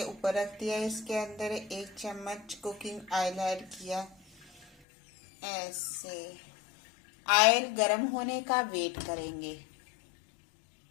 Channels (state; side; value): drops out; right; at 4.7 s